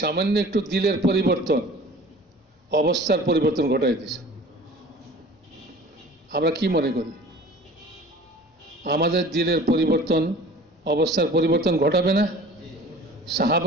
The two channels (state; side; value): normal; both; correlation 0.45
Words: সামান্য একটু দিলের পরিবর্তন অবস্থার পরিবর্তন ঘটাই দিছে। আমরা কি মনে করি আমাদের দিলের পরিবর্তন অবস্থার পরিবর্তন ঘটাবে না?